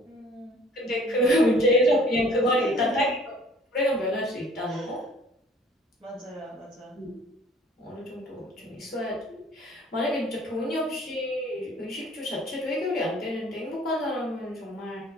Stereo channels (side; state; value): both; normal; correlation 0.54